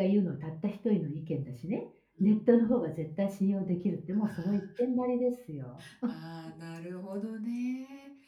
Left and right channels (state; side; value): identical; both; correlation 1.00